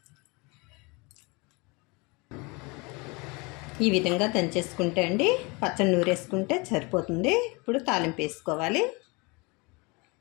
ఈ విధంగా దంచేసుకుంటే అండి పచ్చడి నూరేసుకుంటే సరిపోతుంది. ఇప్పుడు తాలింపు వేసుకోవాలి.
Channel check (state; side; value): quieter; right; 27.6 dB